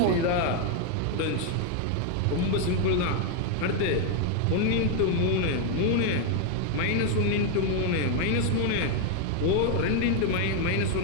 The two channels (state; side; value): different; both; correlation 0.01